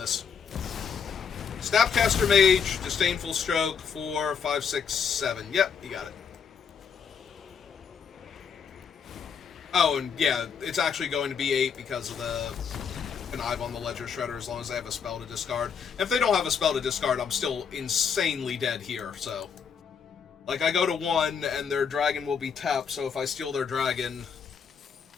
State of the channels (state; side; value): quieter; right; 6.7 dB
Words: Snapcaster Mage, Disdainful Stroke, 4, 5, 6, 7. Yep, you got it. Oh, and yeah, it's actually going to be 8 because of the Connive on the Ledger Shredder as long as they have a spell to discard. If they don't have a spell to discard, I'm still insanely dead here, so... Like, I go to 1, and their dragon will be tapped, so if I steal their dragon...